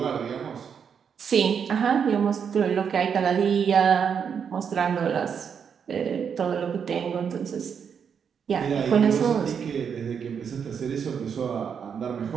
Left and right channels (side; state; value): left; quieter; 7.1 dB